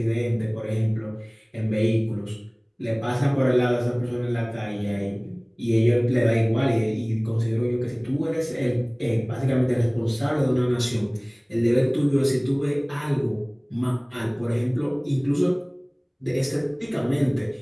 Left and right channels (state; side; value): identical; both; correlation 1.00